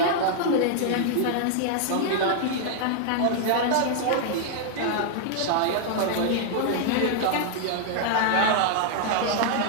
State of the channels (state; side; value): different; both; correlation 0.00